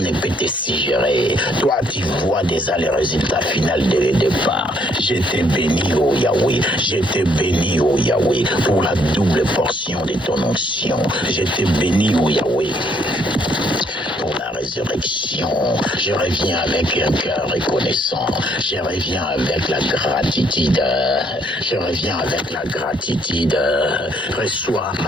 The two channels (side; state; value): both; normal; correlation 0.68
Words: ne peut te suggérer. Toi, tu vois déjà les résultats finaux dès le départ. Je te bénis, oh Yahweh. Je te bénis, oh Yahweh, pour la double portion de ton onction. Je te bénis, oh Yahweh, pour la résurrection. Je reviens avec un cœur reconnaissant. Je reviens avec la gratitude. Je reviens avec la gratitude. Reçois